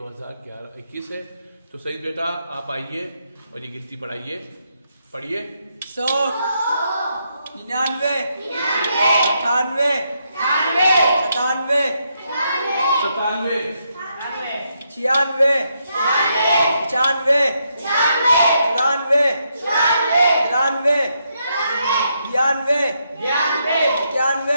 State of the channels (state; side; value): inverted; both; correlation -0.79